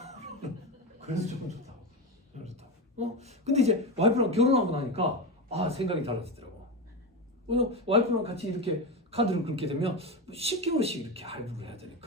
그래서 조금 좋다고. 좀 좋다고. 근데 이제 와이프랑 결혼하고 나니까 생각이 달라지더라고. 왜냐면 와이프랑 같이 이렇게 카드를 긁게 되면 10개월씩 이렇게 할부를 해야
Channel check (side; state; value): both; normal; correlation 0.17